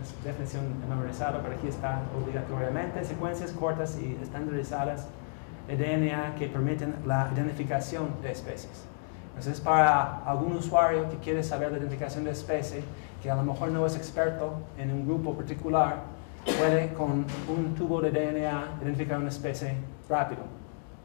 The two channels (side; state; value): right; silent; digital silence